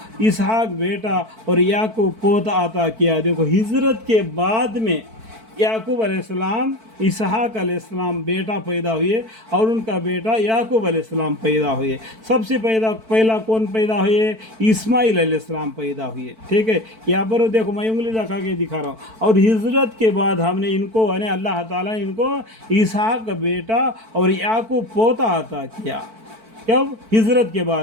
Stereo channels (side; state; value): left; late; 4.5 ms